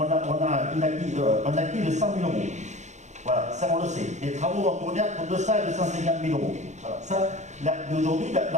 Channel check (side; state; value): left; late; 0.34 ms